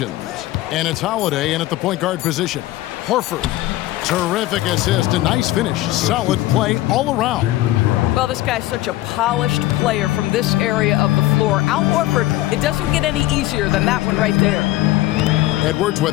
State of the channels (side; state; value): right; quieter; 16.4 dB